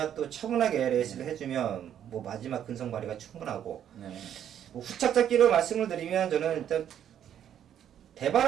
또 차분하게 레이스를 해주면 뭐 마지막 근성 발휘가 충분하고 네. 뭐 후착 잡기로 말씀을 드리면 저는 일단 대발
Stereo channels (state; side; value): quieter; left; 9.9 dB